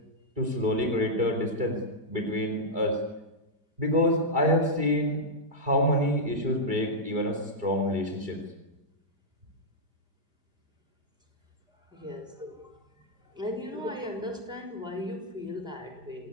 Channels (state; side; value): late; left; 5.0 ms